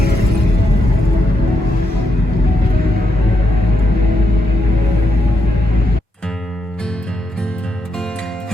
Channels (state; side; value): normal; both; correlation 0.80